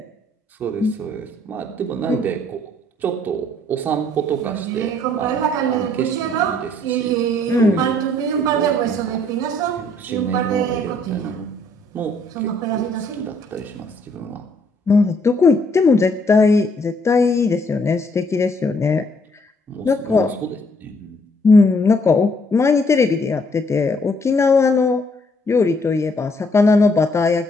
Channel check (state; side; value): normal; both; correlation 0.66